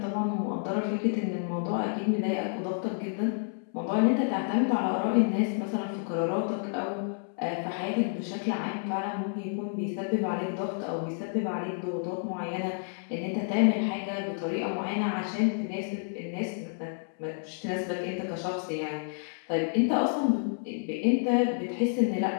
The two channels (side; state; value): right; silent; 58 dB below the other